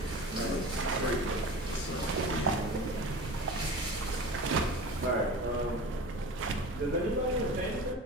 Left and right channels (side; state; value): both; normal; correlation 0.34